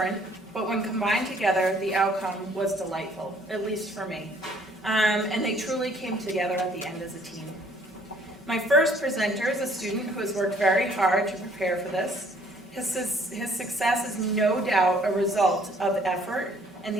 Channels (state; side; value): normal; both; correlation 0.60